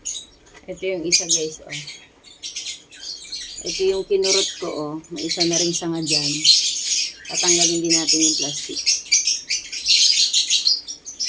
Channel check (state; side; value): identical; both; correlation 1.00